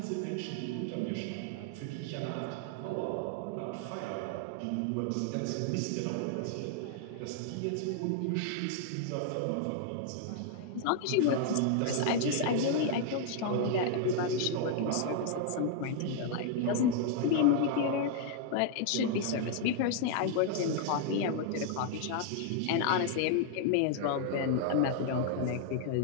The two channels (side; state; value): both; different; correlation 0.00